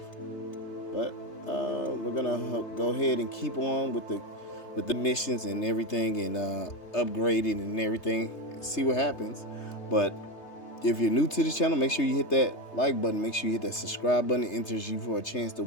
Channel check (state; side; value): late; right; 3.3 ms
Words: But we're gonna go ahead and keep on with the missions and everything, and upgrading and everything, see what happens. But if you're new to the channel, make sure you hit that like button, make sure you hit that subscribe button. It enters you for a chance to